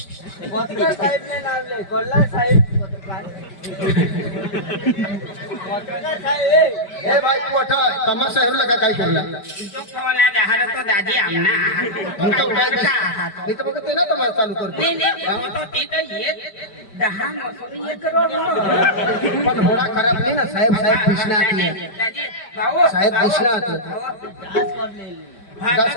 पत्रकार साहेब ने नाम ले कोल्ला साहेब ए भाई तू अठा तमाशा हेरला का काय केला तो खवाला दहार तो दादी आमना मी तर काय मी तर बघते ना तमाशा चालू करतो नाही तो तिथं येत 10 मसून 1 करोड पण होडा खराब नाही ना साहेब साहेब कृष्णात दादी भाऊ साहेब कृष्णात दास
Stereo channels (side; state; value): right; late; 5.1 ms